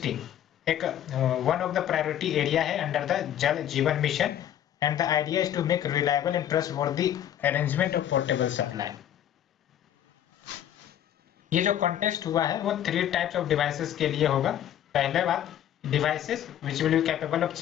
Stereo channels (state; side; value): quieter; right; 10.9 dB